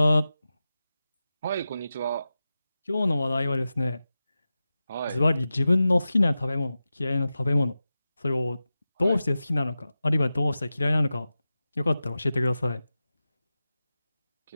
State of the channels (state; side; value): inverted; both; correlation -0.94